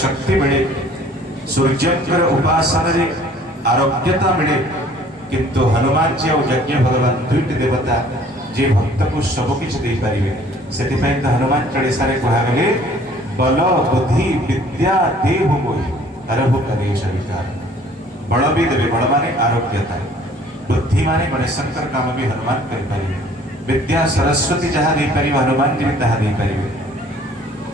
शक्ति मिले सूर्यकर उपासना रे आरोग्यता मिले किंतु हनुमान जी और यज्ञ भगवान दुईट देवता जे भक्त को सब किछ दे पारिबे सेति पय त हनुमान चालीसा रे कहा गेले बल बुद्धि विद्या देव मोहि हरहु कलेश विकार बल भी देवे बल माने आरोग्यता बुद्धि माने गणेशंकर काम भी हनुमान कर पारिबे विद्या सरस्वती जहाँ दे पारिबे हनुमान जी तहा दे पारिबे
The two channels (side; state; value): both; normal; correlation 0.55